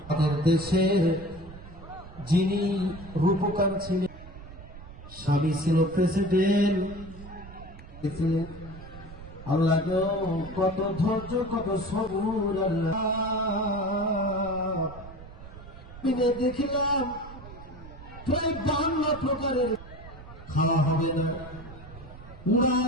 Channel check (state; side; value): noise; right; rumble, 16 dB below the sound